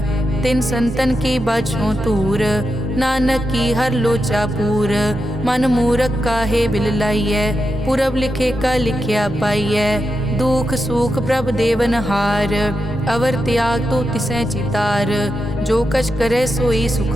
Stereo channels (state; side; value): normal; both; correlation 0.87